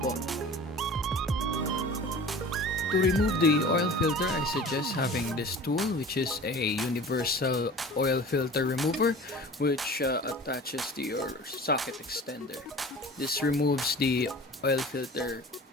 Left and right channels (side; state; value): both; normal; correlation 0.40